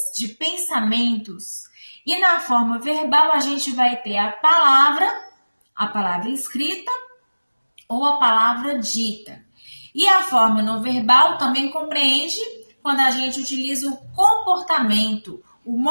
de pensamentos. E na forma verbal a gente vai ter a palavra escrita ou a palavra dita. E a forma não verbal também compreende quando a gente utiliza o comportamento, o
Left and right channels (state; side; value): inverted; both; correlation -1.00